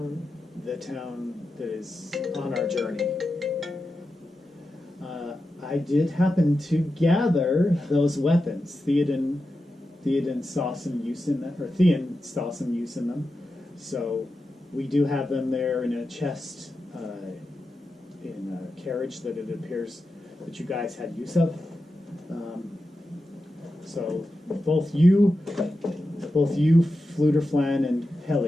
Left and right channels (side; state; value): both; normal; correlation 0.90